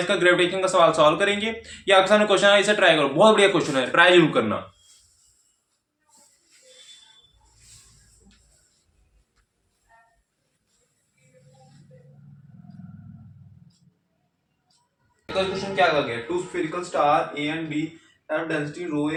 का ग्रेविटेशन का सवाल सॉल्व करेंगे। ये आपके सामने क्वेश्चन है, इसे ट्राई करो, बहुत बढ़िया क्वेश्चन है, ट्राई जरूर करना। क्वेश्चन क्या गया? Two spherical star A and B have density rho A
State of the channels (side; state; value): both; identical; correlation 1.00